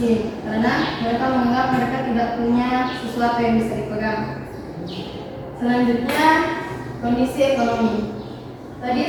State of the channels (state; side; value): identical; both; correlation 1.00